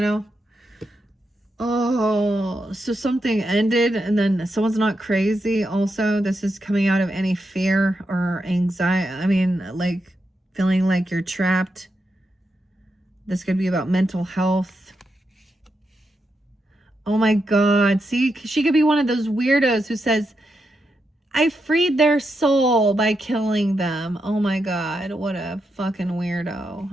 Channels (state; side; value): normal; both; correlation 0.85